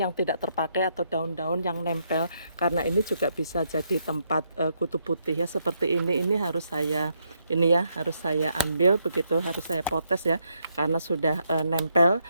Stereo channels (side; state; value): both; inverted; correlation -0.76